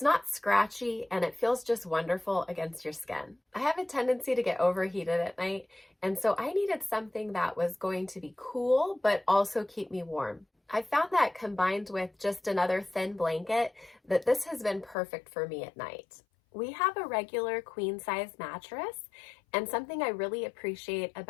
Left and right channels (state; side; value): drops out; right; at 15.0 s